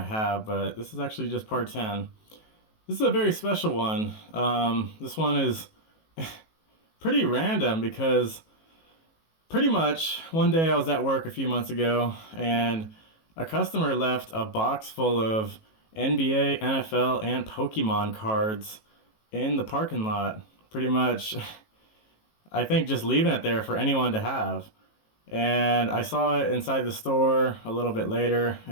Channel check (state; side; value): late; right; 18 ms